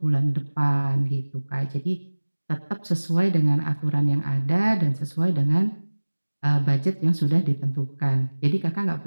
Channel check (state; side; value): inverted; both; correlation -1.00